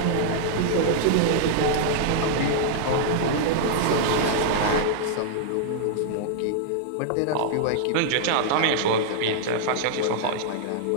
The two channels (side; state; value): both; different; correlation -0.01